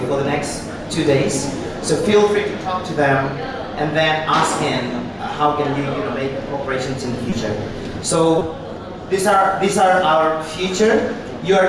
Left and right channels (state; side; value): identical; both; correlation 1.00